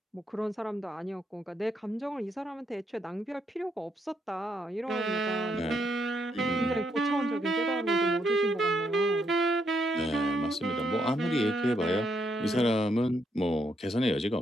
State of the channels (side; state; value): both; normal; correlation 0.76